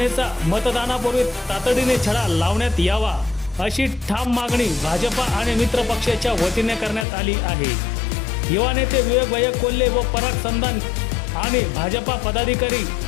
मतदानापूर्वी तातडीने छडा लावण्यात यावा अशी ठाम मागणी भाजपा आणि मित्र पक्षाच्या वतीने करण्यात आली आहे. युवा नेते विवेक भैया कोल्हे व पराग संधान आणि भाजपा पदाधिकारी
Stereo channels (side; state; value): right; drops out; at 7.1 s